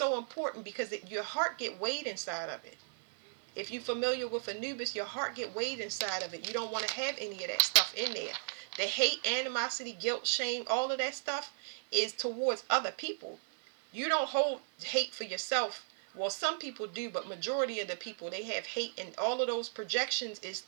important because your heart get weighed inside of it. If you're familiar with Anubis, your heart get weighed inside of it. You don't want to have any of that stuff in there. The hate, animosity, guilt, shame, all of that stuff is towards other people. You don't hold hate for yourself. Well, some people do, but majority of the people, they have hate, and all of those projections is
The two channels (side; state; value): left; silent; 54 dB below the other